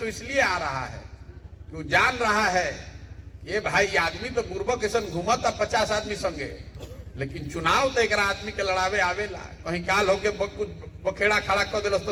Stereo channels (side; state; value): both; identical; correlation 1.00